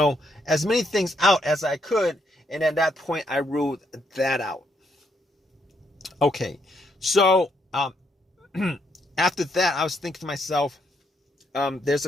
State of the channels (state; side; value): normal; both; correlation 0.75